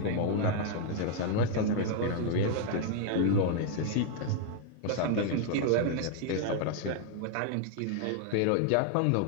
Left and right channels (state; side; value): different; both; correlation 0.00